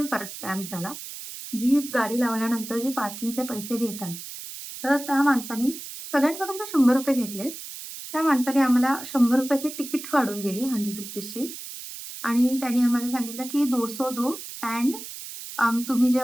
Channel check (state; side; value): noise; right; hiss, 11 dB below the sound